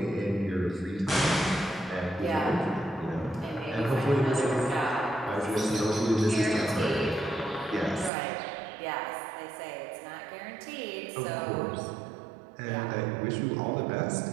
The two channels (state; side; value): drops out; left; at 8.1 s